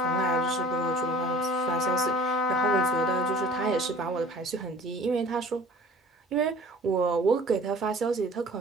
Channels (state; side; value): normal; both; correlation 0.48